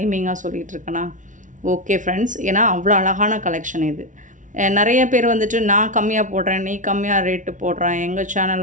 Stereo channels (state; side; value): late; left; 0.37 ms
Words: சொல்லிகிட்டு இருக்கேனா? ஓகே ஃப்ரெண்ட்ஸ், ஏன்னா அவ்வளோ அழகான கலெக்ஷன் இது. நிறைய பேர் வந்துட்டு நான் கம்மியாக போடுறேன், நீ கம்மியாக ரேட்டு போடுறேன், எங்கள்